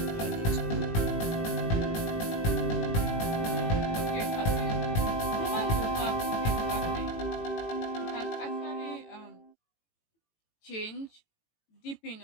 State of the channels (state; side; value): late; right; 18 ms